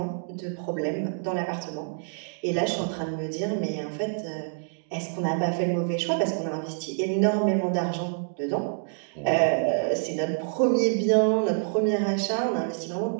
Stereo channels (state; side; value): silent; left; digital silence